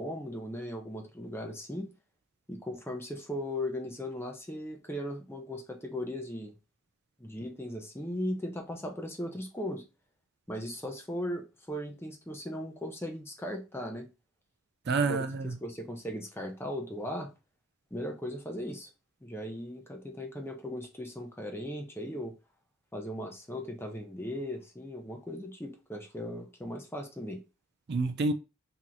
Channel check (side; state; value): both; normal; correlation 0.58